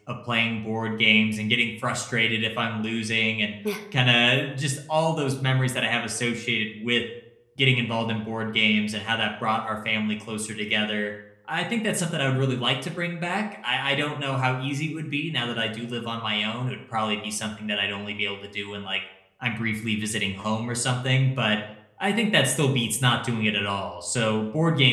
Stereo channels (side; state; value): both; identical; correlation 1.00